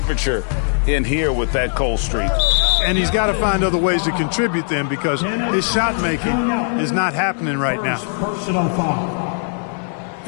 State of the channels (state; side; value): silent; right; 63 dB below the other